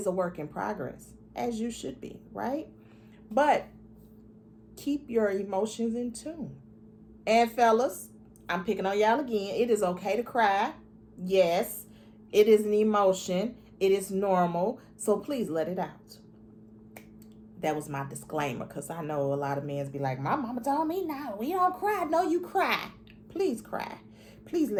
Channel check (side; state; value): both; identical; correlation 1.00